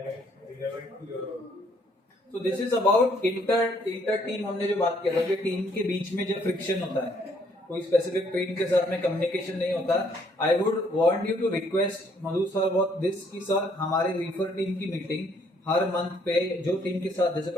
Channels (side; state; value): both; normal; correlation 0.66